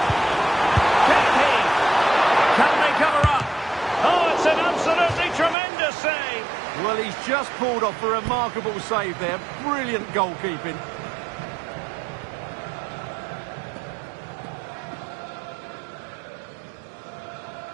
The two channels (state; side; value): drops out; left; at 5.6 s